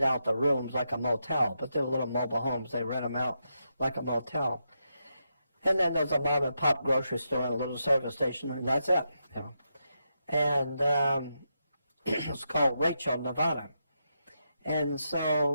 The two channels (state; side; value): inverted; both; correlation -0.84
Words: out the rooms like a motel, but they're little mobile homes. They rent them out like a motel. And then there's a mom and pop grocery store and a little service station, and that's it. You know. And it's called Rachel, Nevada. And